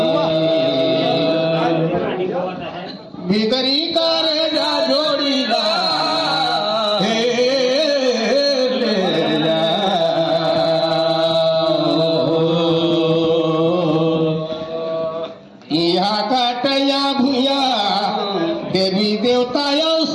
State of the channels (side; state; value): both; identical; correlation 1.00